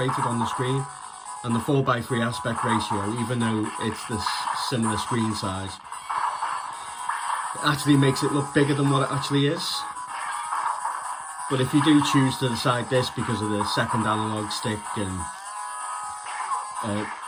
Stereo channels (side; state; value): both; identical; correlation 1.00